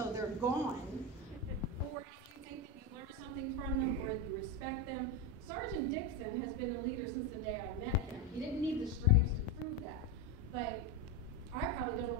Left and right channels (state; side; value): normal; both; correlation 0.13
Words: they're gone, or if you think that you learned something from them, or you respect them. Sergeant Dixon has been a leader since the day I met him. He didn't need the stripes to prove that, but I probably don't